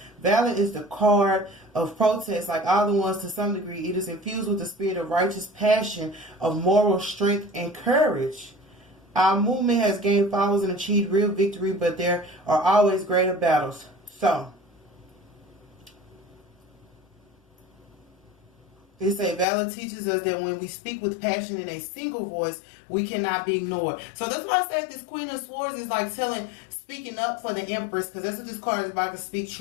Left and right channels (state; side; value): drops out; right; at 19.5 s